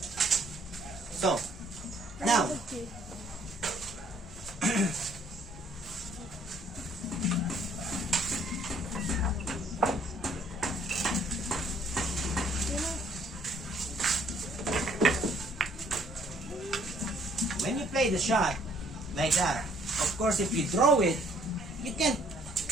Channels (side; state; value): both; normal; correlation 0.63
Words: So, now, when you play the shot like that, of course, if you throw it, you can't